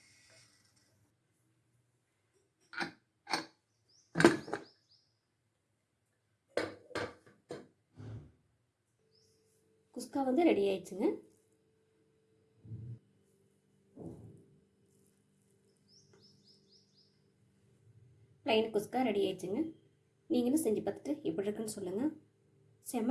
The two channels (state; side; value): identical; both; correlation 1.00